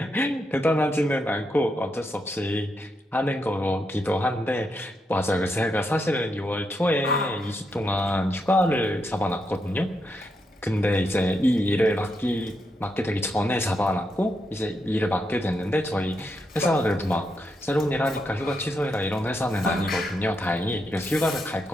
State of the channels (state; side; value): normal; both; correlation 0.82